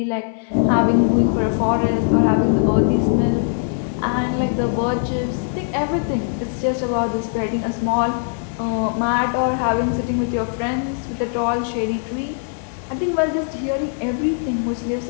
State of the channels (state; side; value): silent; right; 60 dB below the other